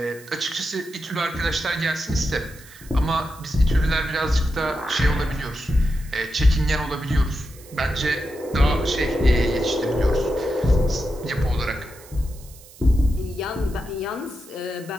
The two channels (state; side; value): noise; right; hiss, 21 dB below the sound